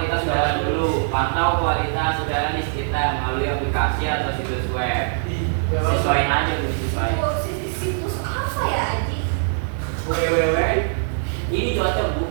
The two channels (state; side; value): silent; left; digital silence